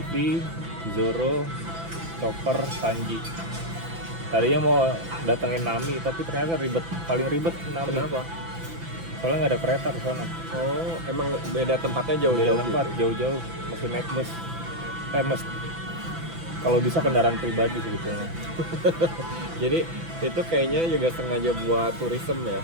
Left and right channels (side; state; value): left; late; 6.0 ms